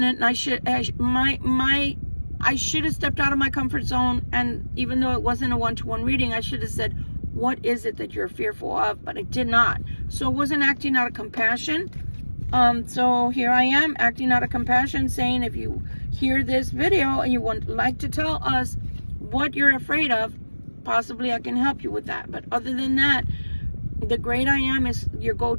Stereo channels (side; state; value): both; inverted; correlation -1.00